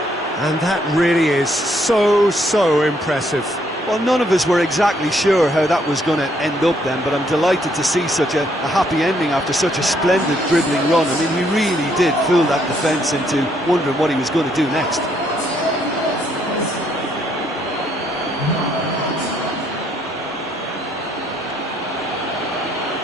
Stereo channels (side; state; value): both; normal; correlation 0.70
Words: And that really is so impressive. Well, none of us were exactly sure how that was going to end up then, but I'm delighted to see such a happy ending after such a splendid dribbling run. I mean, he really did fool that defence into wondering what he was going to do next.